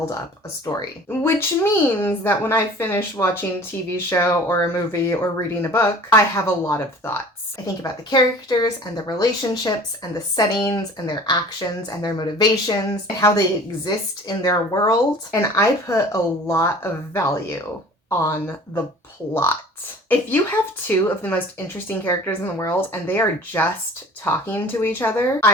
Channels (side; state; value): both; normal; correlation 0.46